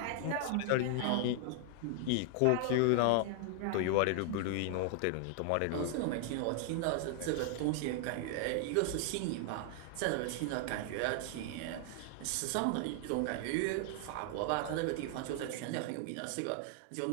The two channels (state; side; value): different; both; correlation 0.00